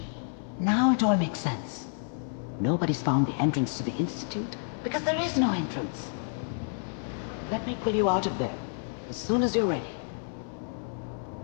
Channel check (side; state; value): right; silent; 58 dB below the other